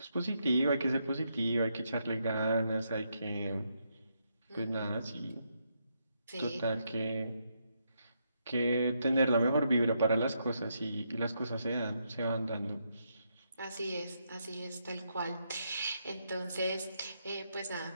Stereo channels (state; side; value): inverted; both; correlation -0.79